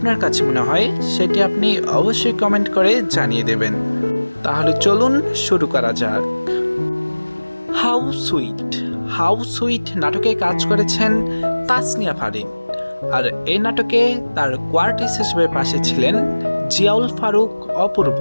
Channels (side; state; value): both; inverted; correlation -1.00